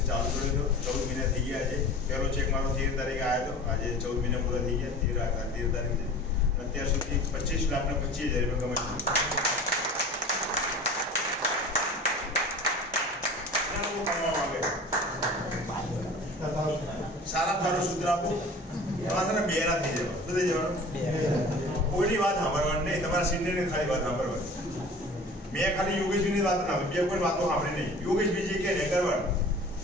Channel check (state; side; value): normal; both; correlation 0.41